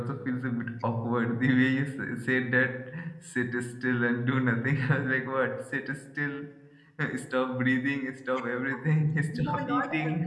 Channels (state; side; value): identical; both; correlation 1.00